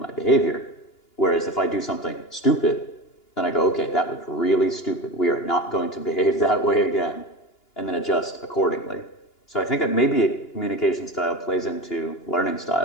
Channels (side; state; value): right; late; 2.9 ms